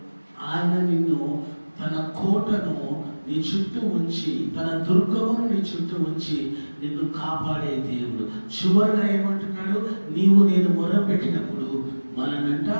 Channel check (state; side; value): inverted; both; correlation -1.00